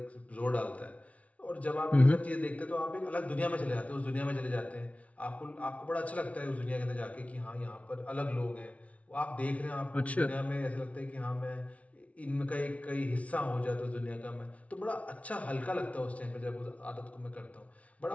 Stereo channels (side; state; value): right; late; 0.065 ms